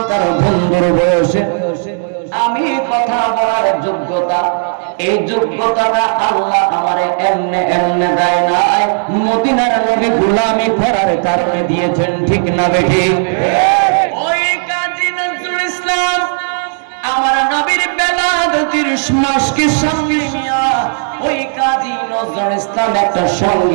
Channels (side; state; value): left; silent; 65 dB below the other